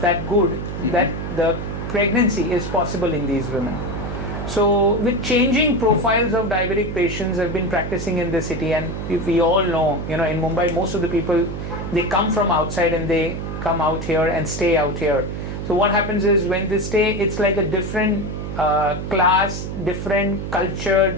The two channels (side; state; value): right; noise; hum, 6 dB below the sound